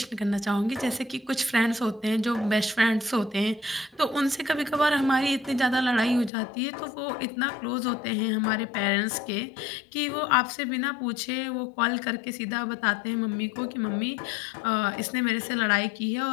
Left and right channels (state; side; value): drops out; right; at 6.3 s